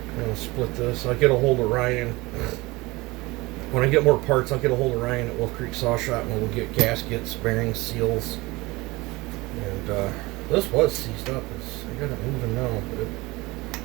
going to split this. I'll get a hold of Ryan. When I get more parts, I'll get a hold of Ryan at Wolf Creek Saw Shop, and we'll get gaskets, bearings, seals. And this was seized up. I got it moving now, but you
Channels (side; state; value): left; quieter; 22.2 dB